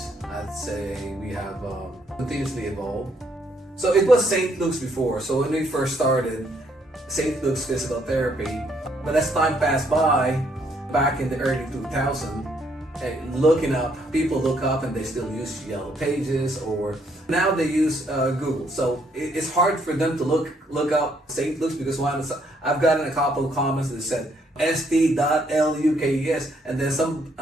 I'd say we have continuously evolved. So it was St. Luke's before. So when we first started, St. Luke's Physical Therapy, but as time passed by, back in the early 2000s, looking up, people look up and they still use Yellow Pages, or now they use Google. So it's hard for them to look up St. Luke's because I've gotten a couple of comments that said st.lukes, and then some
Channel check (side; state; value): both; normal; correlation 0.70